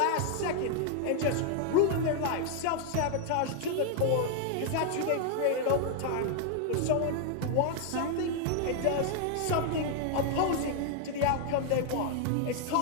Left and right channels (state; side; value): different; both; correlation 0.00